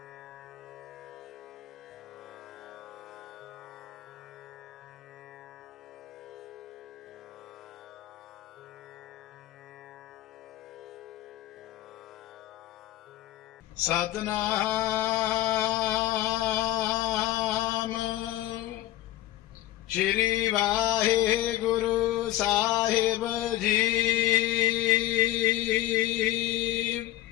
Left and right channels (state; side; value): quieter; right; 14.7 dB